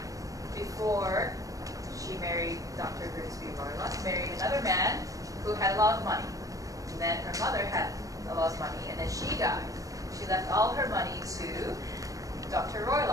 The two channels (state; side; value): late; left; 0.16 ms